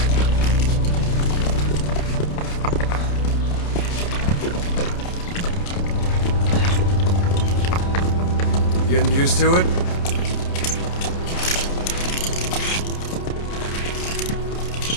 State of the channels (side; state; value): right; late; 29 ms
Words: Getting used to it?